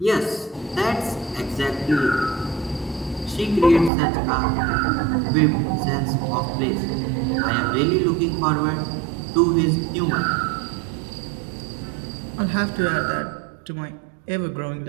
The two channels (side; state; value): left; drops out; at 3.9 s